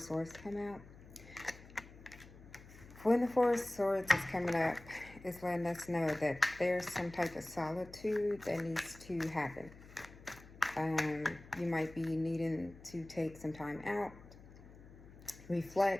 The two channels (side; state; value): left; noise; hum, 19 dB below the sound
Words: Swords come out. When the Four of Swords is coming up, it's letting us know that there's some type of solitude that needs to happen. You might be needing to take some time out,